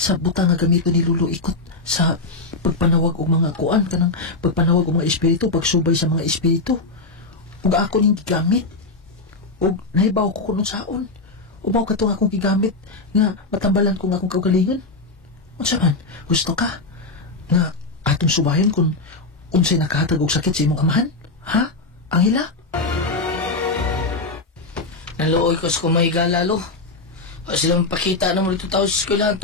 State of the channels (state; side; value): quieter; right; 3.5 dB